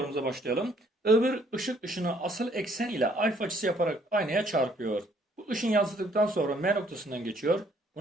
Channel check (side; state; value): both; normal; correlation 0.64